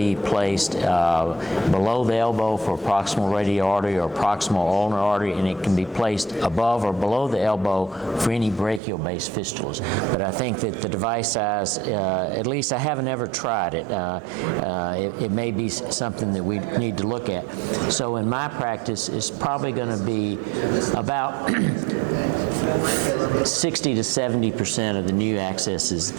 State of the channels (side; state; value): left; drops out; at 8.8 s